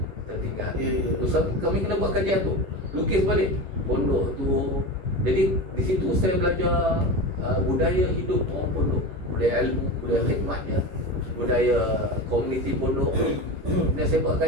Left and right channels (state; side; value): late; left; 11 ms